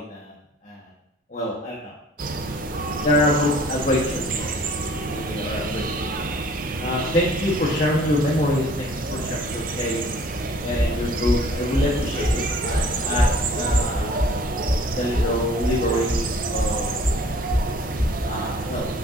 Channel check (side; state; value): both; normal; correlation 0.53